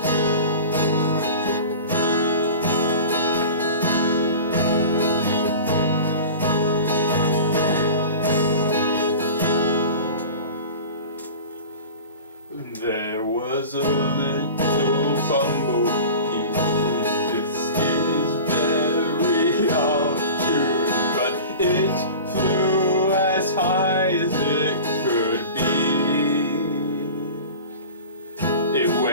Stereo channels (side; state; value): both; inverted; correlation -0.35